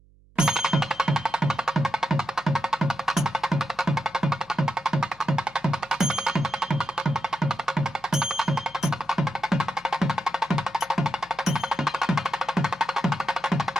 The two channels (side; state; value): right; noise; hum, 29 dB below the sound